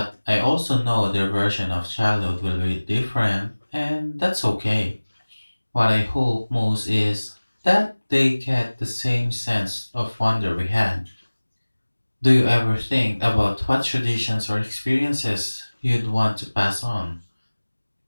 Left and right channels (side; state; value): both; inverted; correlation -1.00